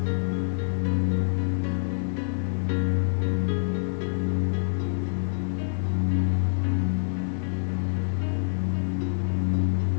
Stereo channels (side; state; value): right; silent; digital silence